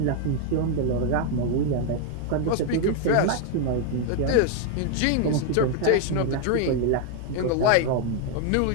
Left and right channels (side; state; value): both; different; correlation 0.01